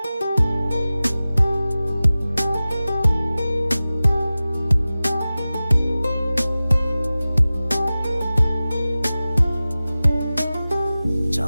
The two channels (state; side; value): inverted; both; correlation -0.97